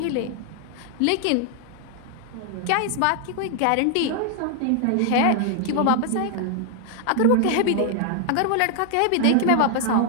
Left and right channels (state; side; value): different; both; correlation 0.00